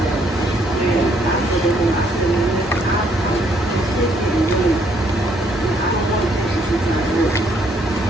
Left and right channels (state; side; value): normal; both; correlation 0.68